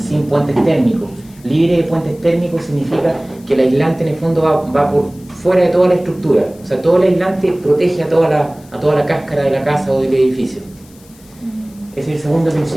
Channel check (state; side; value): noise; left; hiss, 26 dB below the sound